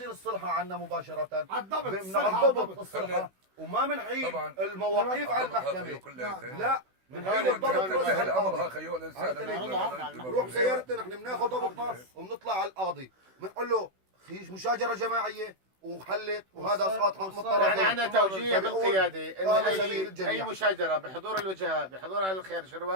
الصلحه عندنا مباشره الضبط الصلحه وما بنحيل طبعا المواقيف على المحكمه. لا بنحيل الضبط الضبط الامر القاضي. خيو الانسان بنروح بسيارتنا نحن بناخذ ضبطنا وبنطلع على القاضي بنقول له خيش مشاجره جماعيه وحلت وهذا اسقاط حق الطرفين. يعني عندنا توجيه بالقياده هذا ان سبيل الجميع. اي مشاجره بحضور الوجهاء بحضور اهل الخير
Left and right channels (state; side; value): late; left; 16 ms